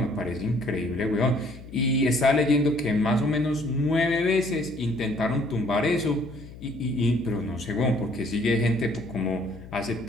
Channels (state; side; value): noise; left; hum, 16 dB below the sound